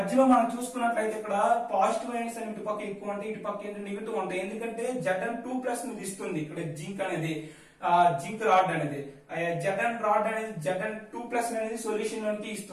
మనం చూసుకున్నట్లయితే ఇక్కడ పాజిటివ్ అయన్స్ అని ఇటు పక్క ఎక్కువ ఉంటాయి, ఇటు పక్క ఏంటి నెగిటివ్ ఉంటాయి. ఎందుకంటే Zn2+ ని ఇస్తుంది ఇక్కడ జింక్ అనేది, జింక్ రాడ్ అనేది. Zn రాడ్ అనేది Zn2+ అనేది సొల్యూషన్ లోకి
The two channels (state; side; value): identical; both; correlation 1.00